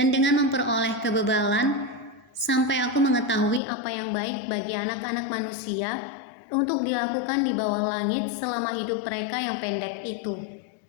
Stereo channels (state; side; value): drops out; right; at 3.6 s